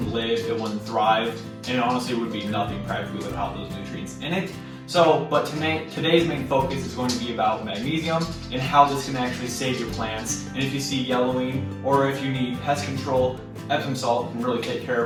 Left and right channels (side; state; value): both; identical; correlation 1.00